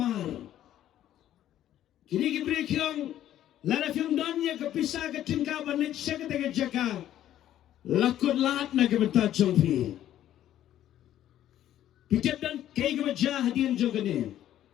kini kibri kiong lara fiong don ya kepisah ke tingka ban lit syadu kena kejaka lakut lahat na kebentar jongpi pitip dan kei kebajah hadian jogane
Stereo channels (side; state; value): right; quieter; 12.0 dB